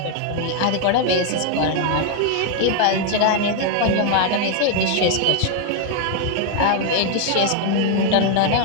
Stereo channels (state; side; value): different; both; correlation 0.00